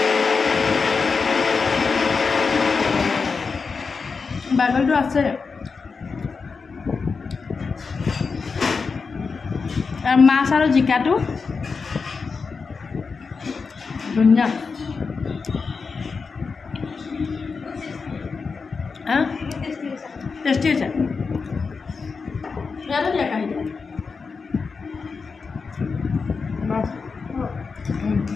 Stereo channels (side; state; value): right; quieter; 4.9 dB